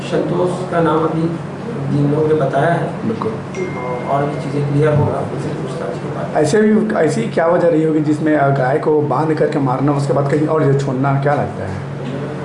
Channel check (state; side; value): identical; both; correlation 1.00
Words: संतोष का नाम अभी जिन लोगों ने बताया है, बिल्कुल, और भी चीज़ें क्लियर होगा उनसे पूछताछ के बाद। ऐसी क्या वजह रही होगी जिसमें गाय को बांध करके मारना, उसके बाद कहीं और जो छोड़ना, क्या लगता है?